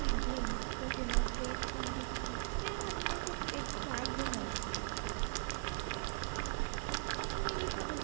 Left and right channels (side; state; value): left; silent; 52 dB below the other